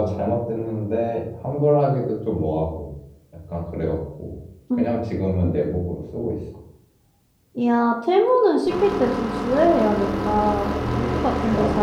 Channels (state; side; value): identical; both; correlation 1.00